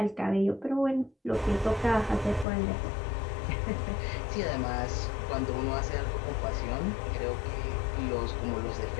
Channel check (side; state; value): right; drops out; at 2.5 s